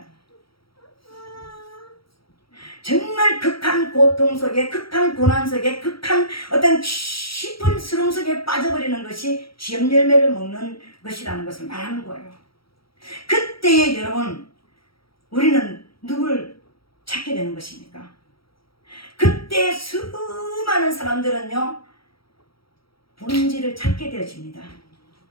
정말 극한 고통 속에, 극한 고난 속에, 극한 어떤 깊은 수렁 속에 빠져버리는 것이 지업 열매를 먹는 것이라는 것을 말하는 거예요. 그때에 여러분 우리는 누굴 찾게 되는 것입니까? 그때 수많은 사람들은요 본질을 찾게 되어집니다.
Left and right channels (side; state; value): right; late; 0.75 ms